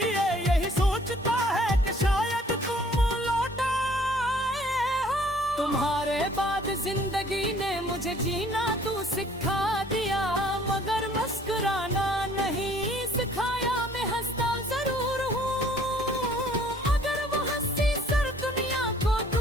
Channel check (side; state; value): both; normal; correlation 0.58